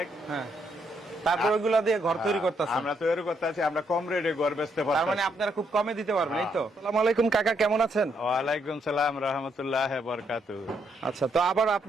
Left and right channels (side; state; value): both; normal; correlation 0.75